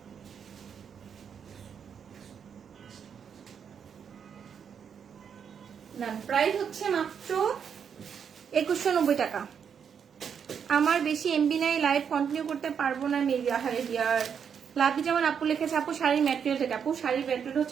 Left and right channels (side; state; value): left; quieter; 7.4 dB